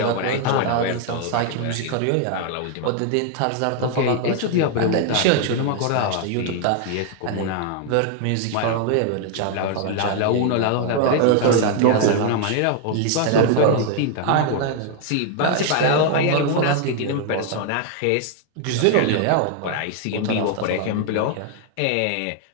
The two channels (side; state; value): both; different; correlation 0.00